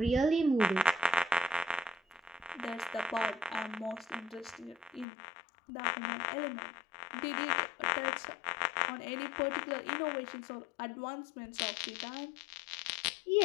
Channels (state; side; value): drops out; right; at 5.1 s